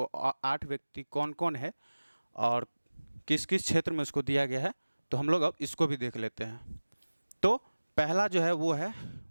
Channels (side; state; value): both; inverted; correlation -1.00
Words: 8 व्यक्ति कौन कौन है और किस किस क्षेत्र में उसको दिया गया है, तो हम लोग अब इसको भी देख लेते हैं। तो पहला जो है वो है